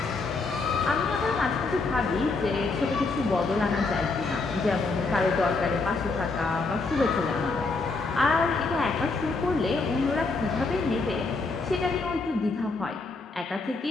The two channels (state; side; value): quieter; right; 3.8 dB